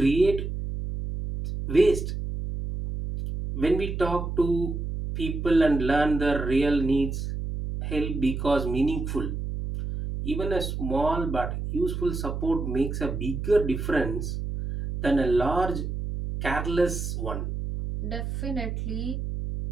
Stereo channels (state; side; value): noise; right; hum, 4 dB below the sound